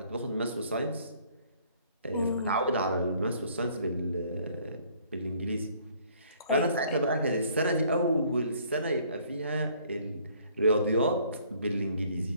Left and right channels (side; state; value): both; inverted; correlation -0.60